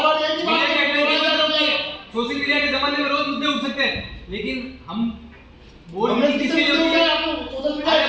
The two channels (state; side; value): identical; both; correlation 1.00